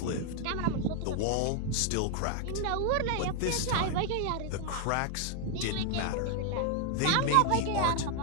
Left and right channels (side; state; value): both; different; correlation 0.00